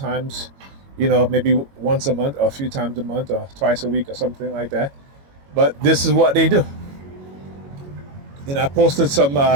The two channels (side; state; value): left; late; 22 ms